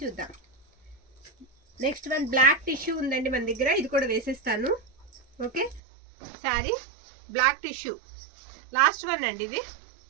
చూద్దాం. నెక్స్ట్ వన్ బ్లాక్ టిష్యూ ఉందండి మన దగ్గర. ఇది కూడా వేసేస్తాను. Okay, sorry black tissue. Last one అండి ఇది.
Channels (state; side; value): drops out; left; at 5.8 s